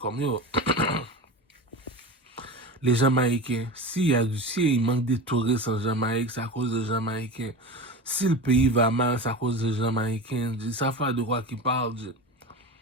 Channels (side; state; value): both; normal; correlation 0.29